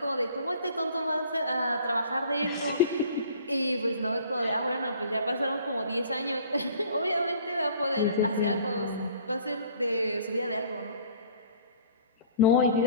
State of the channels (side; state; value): both; inverted; correlation -0.51